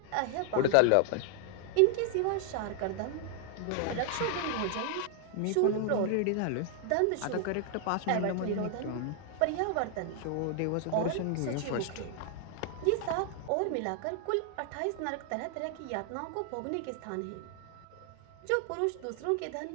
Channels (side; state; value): both; different; correlation 0.00